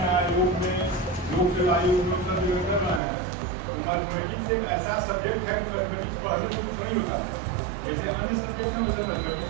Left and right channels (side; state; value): left; drops out; at 3.0 s